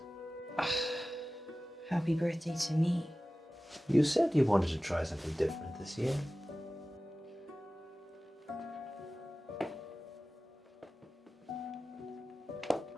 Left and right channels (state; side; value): normal; both; correlation 0.96